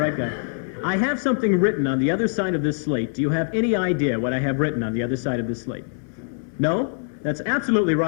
guy. I have something written on the other side of this slate. Do you have any idea what I have written on the other side of this slate? No? That's absolutely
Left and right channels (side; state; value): right; silent; 60 dB below the other